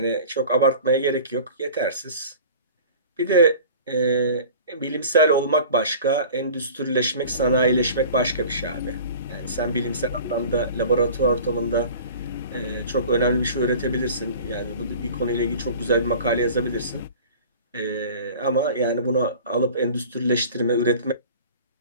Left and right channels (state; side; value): inverted; both; correlation -0.42